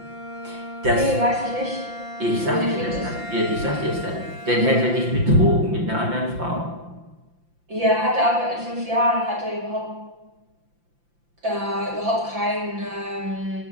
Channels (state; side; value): late; left; 5.8 ms